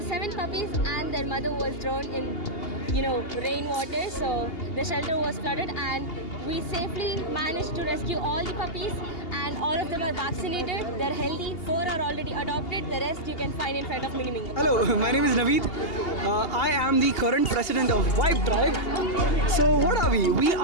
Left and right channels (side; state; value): right; late; 2.8 ms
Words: 7 puppies and their mother was drowned in rainwater. So the shelter was flooded, and we safely managed to rescue all the puppies, and all of them are vaccinated. They're healthy. 4 are already adopted. The rest you can find in front of Mini Mingo. Hello, my name is Naveed. I am the current president of Vibe Tribe. So what are we? We